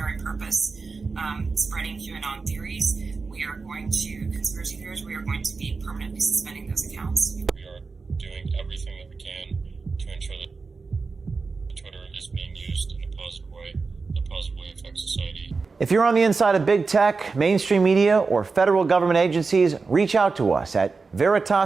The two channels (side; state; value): left; quieter; 4.4 dB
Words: purpose, spreading QAnon theories, we are going to, conspiracy theories, we are going to be permanently suspending those accounts. We are doing everything that we can to ensure that Twitter is being used in a positive way that positively affects society. If you're on the inside of big tech, mainstream media, or federal government agencies, reach out to us at